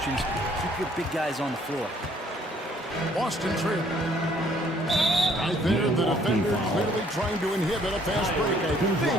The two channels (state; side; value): normal; both; correlation 0.62